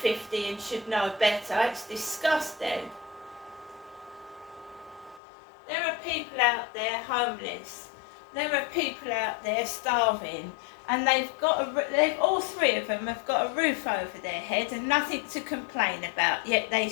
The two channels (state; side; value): drops out; right; at 5.2 s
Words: and should know better. It's disgusting. There are people out there homeless. There are people out there starving, and all three of them have got a roof over their head and nothing to complain about. Yet they